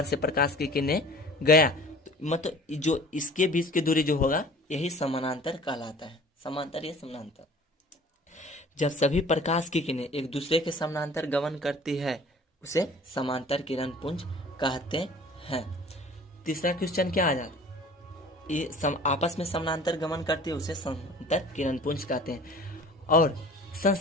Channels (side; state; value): both; normal; correlation 0.46